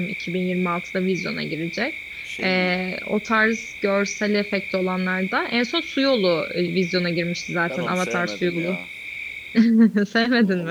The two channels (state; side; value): identical; both; correlation 1.00